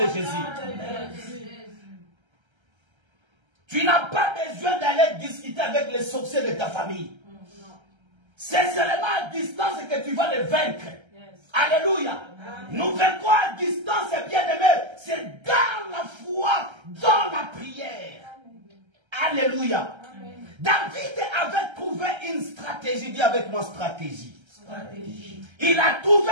Jésus. Amen. Tu n'as pas besoin d'aller discuter avec les sorciers de ta famille. C'est seulement à distance que tu vas les vaincre. Alléluia. Amen. Nous vaincrons à distance, bien-aimé. C'est dans la foi, dans la prière. Amen. Alléluia. Amen. David avait trouvé une stratégie. Dis avec moi stratégie. Stratégie. Il a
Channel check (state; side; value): late; left; 1.3 ms